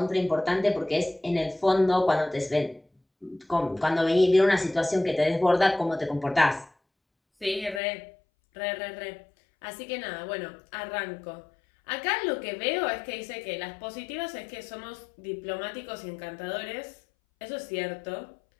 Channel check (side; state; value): right; drops out; at 7.8 s